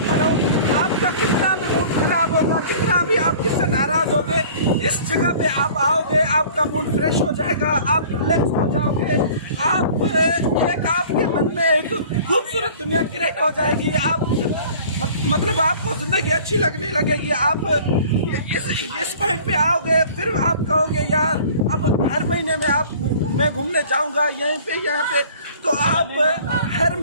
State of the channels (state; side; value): inverted; both; correlation -0.47